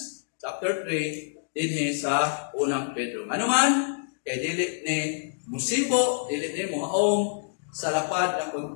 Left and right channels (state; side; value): silent; right; digital silence